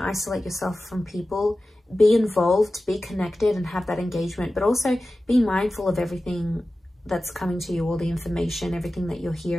yourself from people. Be involved, be connected, and have that engagement. But also be mindful of everything that's coming to you, all the information, everything that you're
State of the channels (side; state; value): both; normal; correlation 0.95